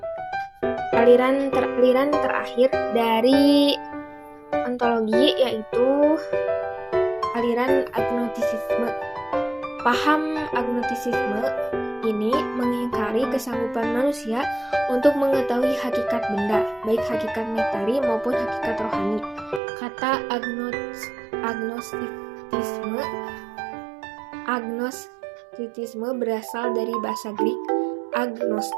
Aliran terakhir dari ontologi yaitu aliran agnostisisme. Paham agnostisisme ini mengingkari kesanggupan manusia untuk mengetahui hakikat benda, baik hakikat materi maupun hakikat rohani. Kata agnostitisme berasal dari bahasa Greek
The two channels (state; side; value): drops out; left; at 19.6 s